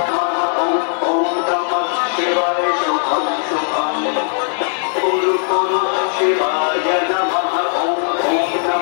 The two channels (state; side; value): silent; right; 55 dB below the other